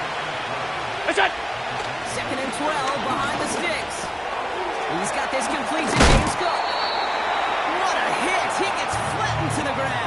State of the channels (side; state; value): both; identical; correlation 1.00